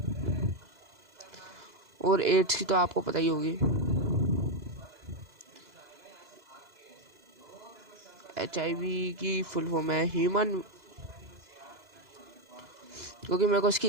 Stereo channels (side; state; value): left; late; 2.0 ms